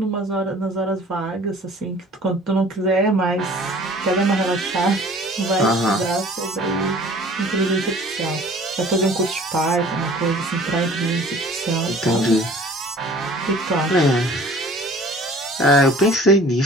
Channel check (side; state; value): both; normal; correlation 0.49